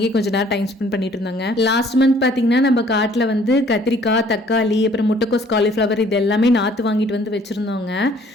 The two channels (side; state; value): both; normal; correlation 0.58